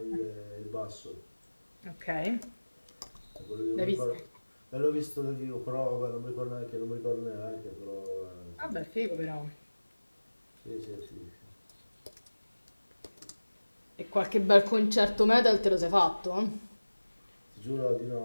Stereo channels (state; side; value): inverted; both; correlation -1.00